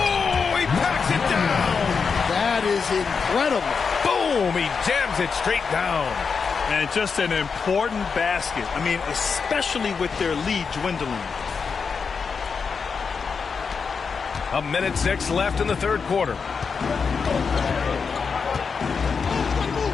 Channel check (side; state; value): right; quieter; 5.5 dB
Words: he packs it down. That is incredible. Boom, he jams it straight down. And just an important basket. I mean, especially with their lead dwindling. 1:06 left in the third quarter.